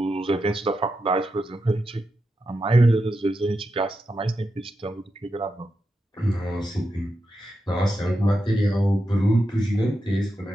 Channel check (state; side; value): normal; both; correlation 0.87